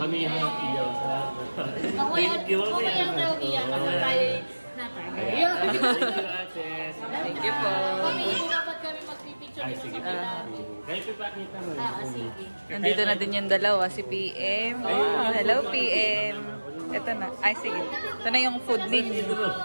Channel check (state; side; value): inverted; both; correlation -1.00